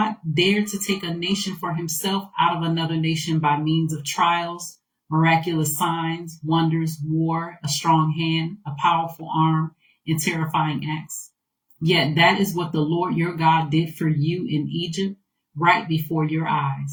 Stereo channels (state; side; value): identical; both; correlation 1.00